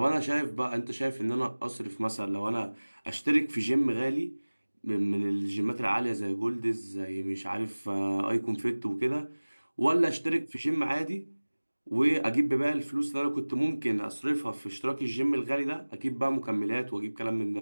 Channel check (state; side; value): inverted; both; correlation -1.00